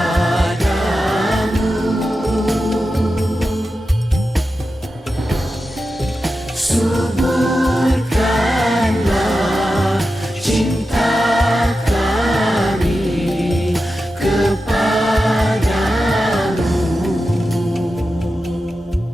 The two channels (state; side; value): normal; both; correlation 0.91